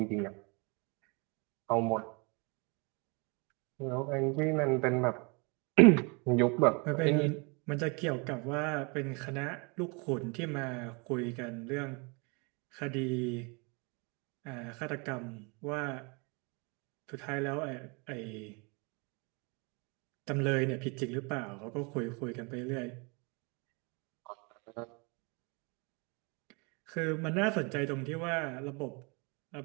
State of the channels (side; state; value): left; quieter; 31.1 dB